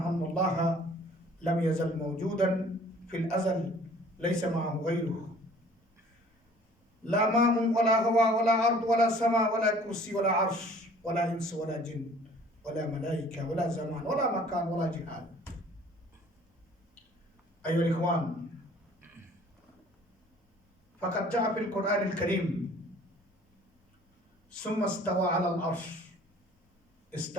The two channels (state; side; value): normal; both; correlation 0.52